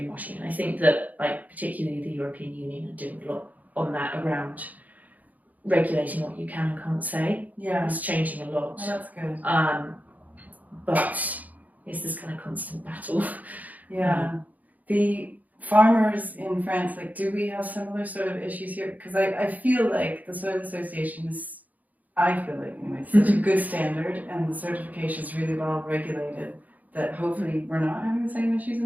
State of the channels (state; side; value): late; left; 0.078 ms